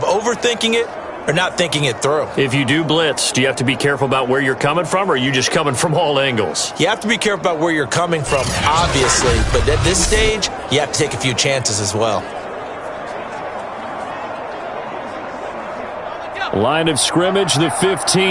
overthinking it or not thinking it through. If you do blitz, do you have to be careful about where you're coming from, or are you just coming from all angles? You have to be careful about where you're coming from, obviously. But at this stage, you have to take a few chances as well. Line of scrimmage, the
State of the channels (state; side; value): identical; both; correlation 1.00